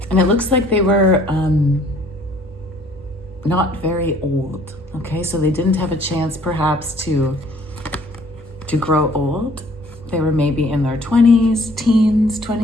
And it looks like they were not very old, okay? So they didn't have a chance perhaps to grow old. They were maybe in their 20s, teens,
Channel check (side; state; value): both; normal; correlation 0.58